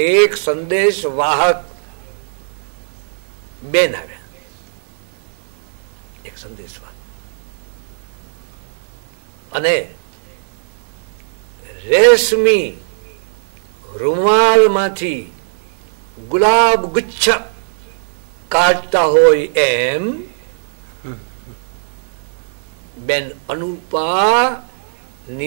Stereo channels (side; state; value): left; silent; 63 dB below the other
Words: એક સંદેશ વાહક બેન આવ્યા. એક સંદેશ વાહક અને રેશમી રૂમાલમાંથી ગુલાબ ગુચ્છ કાઢતા હોય એમ બેન અનુપા